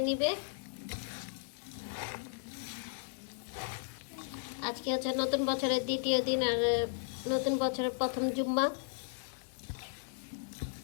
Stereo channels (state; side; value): silent; right; digital silence